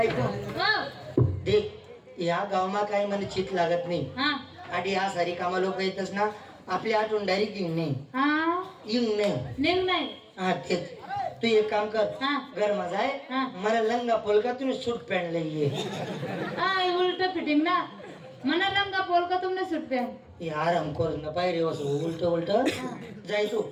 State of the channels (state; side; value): identical; both; correlation 1.00